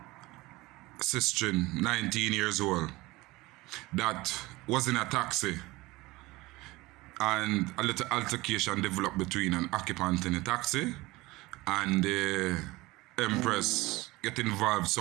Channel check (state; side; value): quieter; left; 20.7 dB